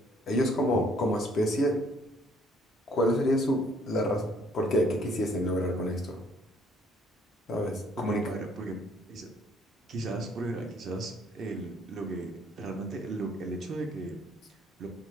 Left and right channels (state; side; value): normal; both; correlation 0.63